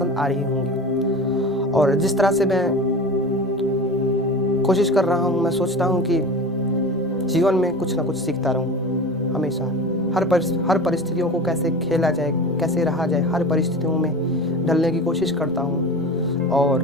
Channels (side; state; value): both; normal; correlation 0.32